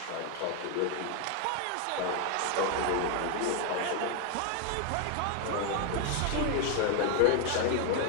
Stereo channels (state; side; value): different; both; correlation 0.01